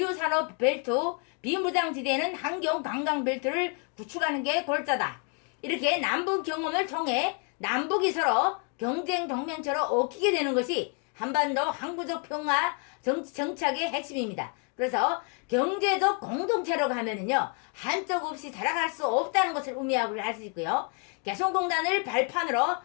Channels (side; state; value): right; quieter; 37.3 dB